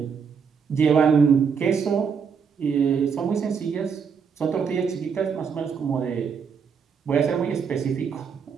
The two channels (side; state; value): left; quieter; 6.3 dB